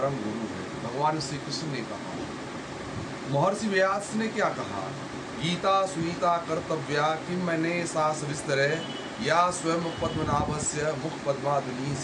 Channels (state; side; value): identical; both; correlation 1.00